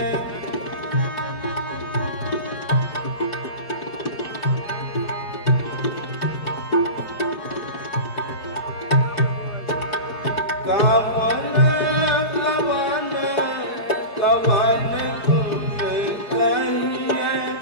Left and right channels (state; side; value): late; right; 4.9 ms